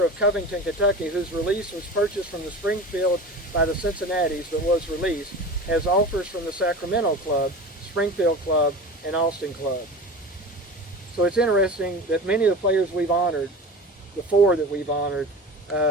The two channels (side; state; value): both; normal; correlation 0.33